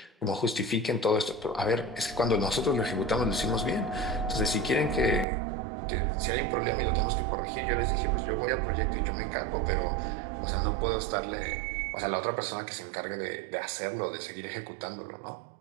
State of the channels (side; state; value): left; drops out; at 5.2 s